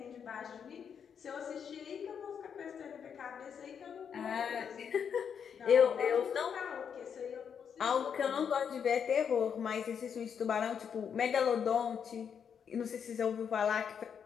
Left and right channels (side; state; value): right; quieter; 7.4 dB